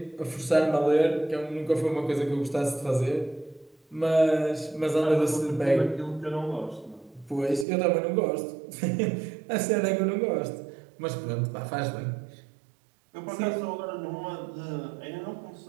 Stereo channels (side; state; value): left; drops out; at 7.7 s